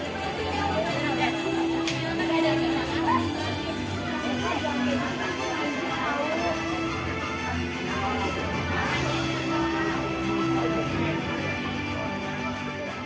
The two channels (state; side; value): identical; both; correlation 1.00